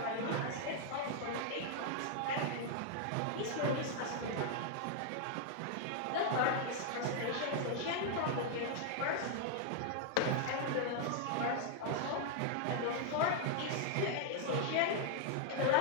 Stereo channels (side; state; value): both; different; correlation 0.00